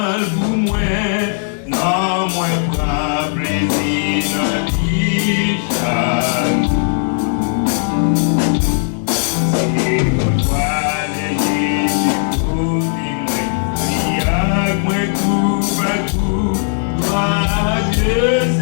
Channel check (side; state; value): right; silent; 65 dB below the other